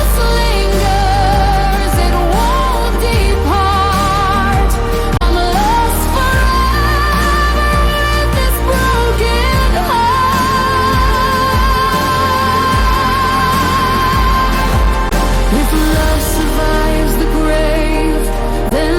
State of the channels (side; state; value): both; identical; correlation 1.00